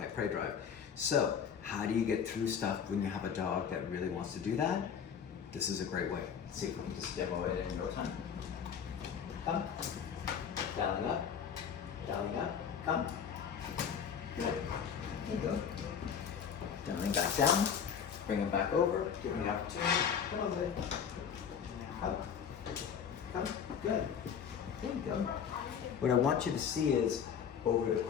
prey drive. So how do you get through stuff when you have a dog that really wants to do that? This is a great way. Let's see if we can just demo it in no time. Come. Dialing up. Dialing up. Come. Good. There you go. Dialing back down. Bring him back over. Give him the opportunity. Come on, baby. Come. Come. Good. There you go. What I want you to see is over the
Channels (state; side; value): quieter; right; 7.5 dB